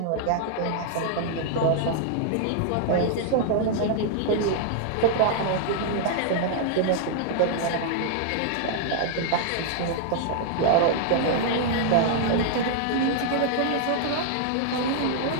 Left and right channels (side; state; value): both; different; correlation -0.01